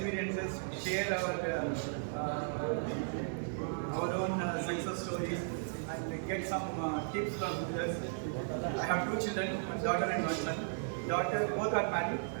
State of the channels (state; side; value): silent; left; 54 dB below the other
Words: share our own success stories, and get some tips from others. I have 2 children, one daughter and one son. Daughter, both are married.